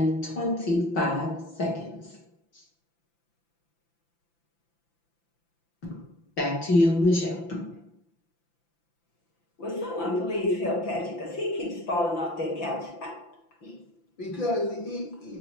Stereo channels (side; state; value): right; late; 5.9 ms